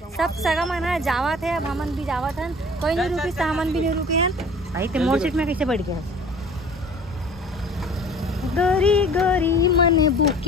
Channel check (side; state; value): both; normal; correlation 0.46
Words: सब सगा मन जावत है। अब हमन भी जावत हन कोई नहीं रुकी तो हमन भी नहीं रुके हैं भाई। ते मोर सीट में कैसे बैठ गया गोरी गोरी मन